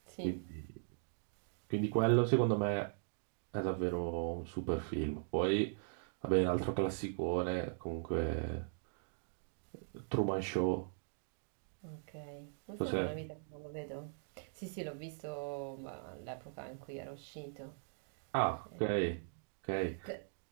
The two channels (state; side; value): silent; left; digital silence